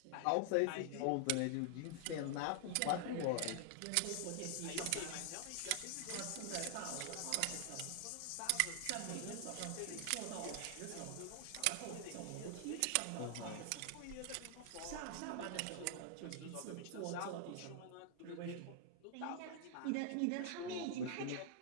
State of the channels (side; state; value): both; different; correlation 0.00